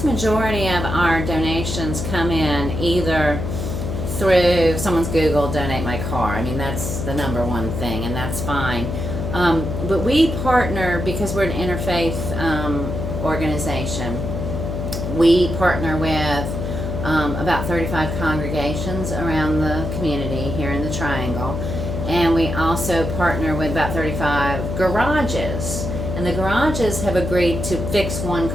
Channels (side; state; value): left; noise; hum, 4 dB below the sound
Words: majority of our donations come in either through someone's Google, donate my car. I mean, that's the number one thing, and that's fine. But we partner, because we're an interfaith organization, we partner with about 35 congregations around the community here in the Triangle. And we also partner with about 35 garages. And the garages have agreed to fix one